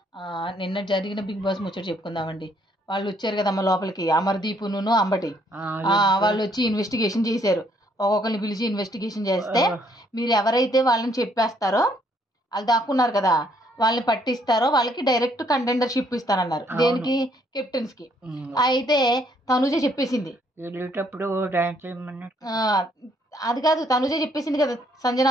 నిన్న జరిగిన బిగ్ బాస్ ముచ్చట చెప్పుకుందామండి. వాళ్ళు వచ్చారు కదమ్మ లోపలికి, అమర్దీపును అంబటి. వాళ్ళు వచ్చి ఇన్వెస్టిగేషన్ చేశారు. ఒక్కొక్కరిని పిలిచి ఇన్వెస్టిగేషన్ చేస్తే మీరు ఎవరైతే వాళ్ళని చెప్పేస్తారో, వాళ్ళు దాక్కున్నారు కదా, వాళ్ళని పట్టిస్తారో వాళ్ళకి డైరెక్ట్ కంటెండర్షిప్ ఇస్తానన్నారు. దేనికి? కెప్టెన్స్ కి. అయితే తనుజ చెప్పేసింది వెళ్ళేటప్పుడు డాన్స్ చేయమన్నారు. అది కాదు, తనుజ చెప్పేసింది కదా, సంజన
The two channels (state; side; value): normal; both; correlation 0.67